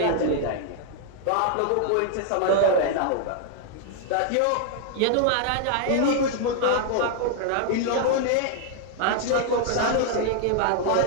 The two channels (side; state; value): both; different; correlation 0.00